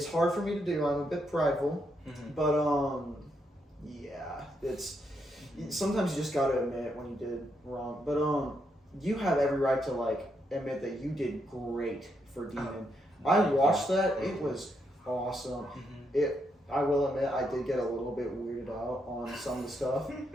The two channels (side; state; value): both; normal; correlation 0.79